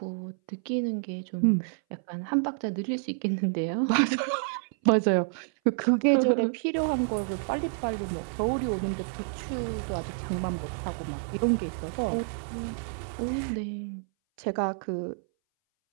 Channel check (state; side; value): silent; left; 59 dB below the other